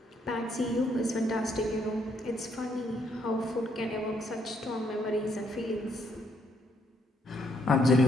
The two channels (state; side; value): normal; both; correlation 0.72